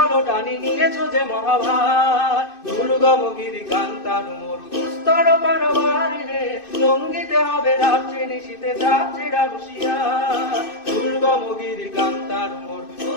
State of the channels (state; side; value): late; right; 2.6 ms